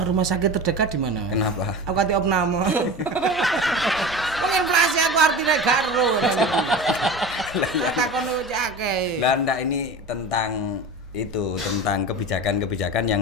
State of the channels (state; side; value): normal; both; correlation 0.31